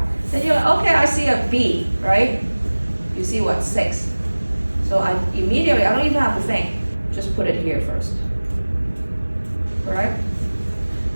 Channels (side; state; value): both; inverted; correlation -1.00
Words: then you're like, okay, I see a B, right? You see what, 6. So I immediately, I don't even have to think, just put it here first, correct?